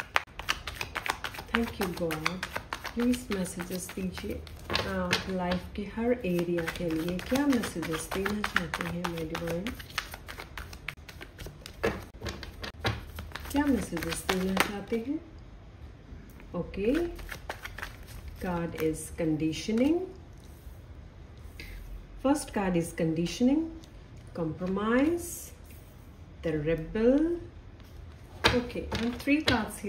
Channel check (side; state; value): both; identical; correlation 1.00